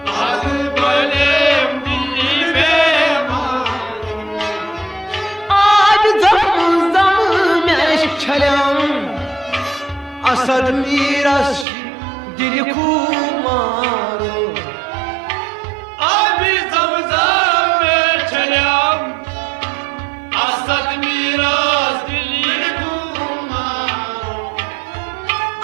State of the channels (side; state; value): left; drops out; at 11.7 s